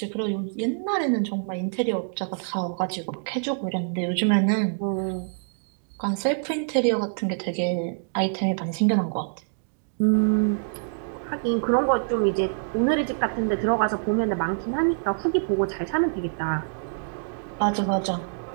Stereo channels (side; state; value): left; silent; digital silence